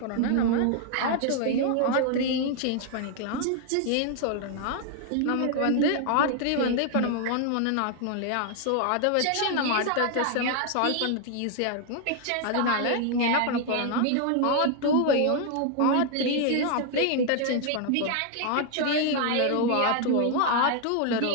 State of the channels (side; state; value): both; different; correlation 0.00